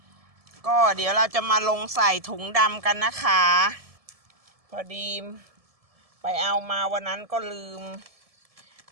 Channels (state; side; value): late; left; 1.7 ms